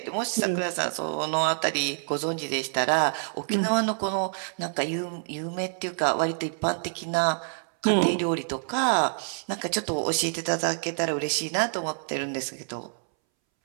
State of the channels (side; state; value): left; silent; 60 dB below the other